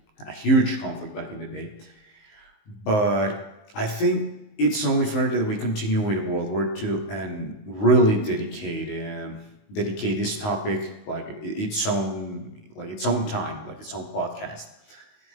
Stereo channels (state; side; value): late; right; 19 ms